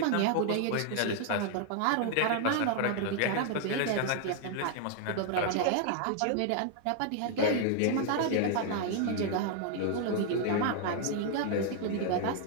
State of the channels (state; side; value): different; both; correlation 0.00